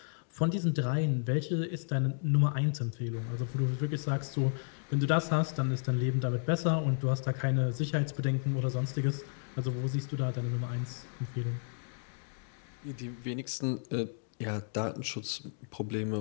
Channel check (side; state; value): right; silent; digital silence